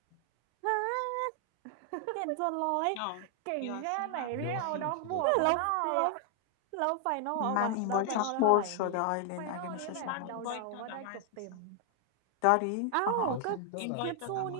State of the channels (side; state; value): both; different; correlation 0.00